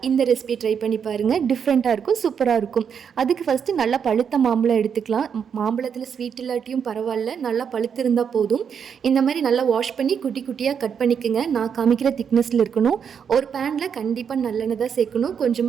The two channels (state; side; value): quieter; left; 7.3 dB